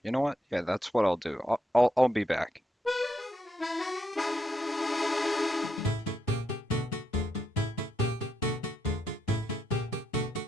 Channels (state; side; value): normal; both; correlation 0.79